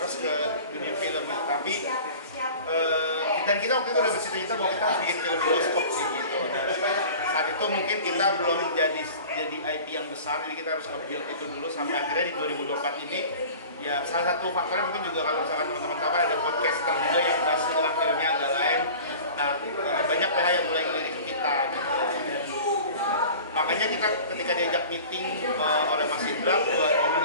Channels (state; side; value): inverted; both; correlation -0.41